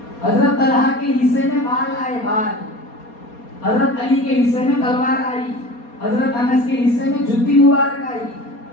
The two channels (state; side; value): late; right; 4.2 ms